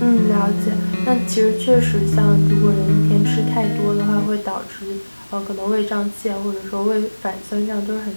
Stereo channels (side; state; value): both; inverted; correlation -1.00